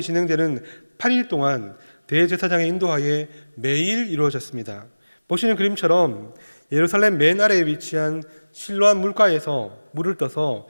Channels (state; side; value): inverted; both; correlation -1.00